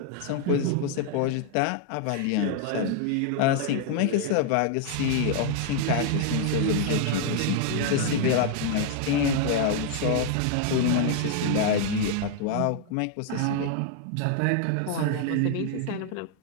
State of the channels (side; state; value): both; different; correlation 0.00